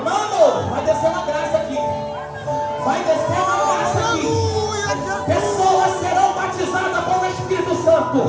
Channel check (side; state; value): both; identical; correlation 1.00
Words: Mano, vai descer uma graça aqui. Vai descer uma graça aqui. Pessoas serão batizadas com o Espírito Santo.